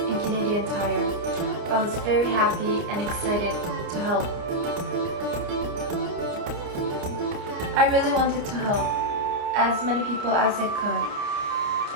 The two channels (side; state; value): left; late; 29 ms